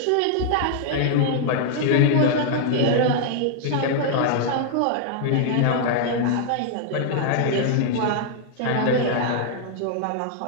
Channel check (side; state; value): both; different; correlation 0.00